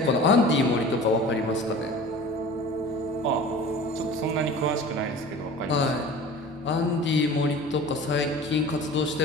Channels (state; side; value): normal; both; correlation 0.40